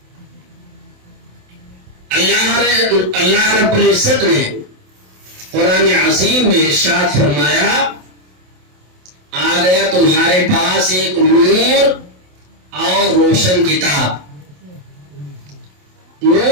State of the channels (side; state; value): left; late; 27 ms